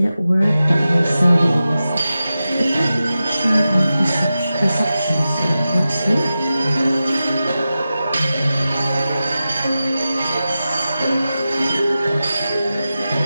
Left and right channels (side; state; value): both; inverted; correlation -0.93